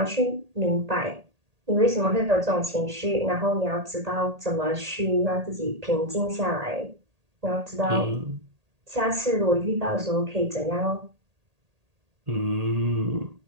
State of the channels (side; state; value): left; late; 1.8 ms